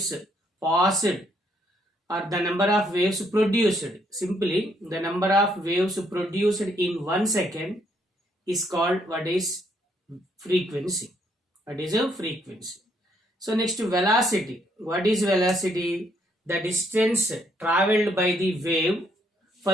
passed, or the number of waves produced. Simply the number of waves produced in 1 second is called what is frequency. What is a frequency? So next, velocity. What is velocity? The distance traveled by the wave for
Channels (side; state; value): both; normal; correlation 0.71